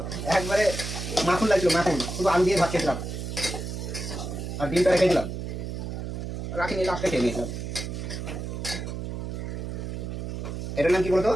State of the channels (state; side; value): noise; right; hum, 5 dB below the sound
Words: একবারে মাখন লাগছিল, মাখন, শুধু আলু দিয়ে ভাত খেয়েছিলাম আর ডিমটা রেখে দিলাম, রাখিনি, লাস্টে খেয়ে নিয়েছিলাম। এটার নাম কি বলতো,